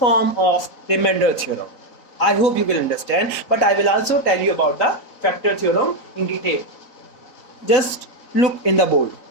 of remainder theorem. I hope you will understand, but I will also tell you about the factor theorem in detail. Just look in the board.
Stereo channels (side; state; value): right; late; 4.0 ms